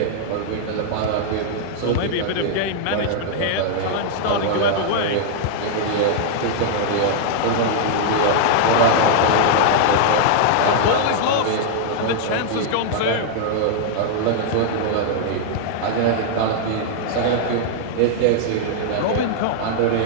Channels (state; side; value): different; both; correlation -0.01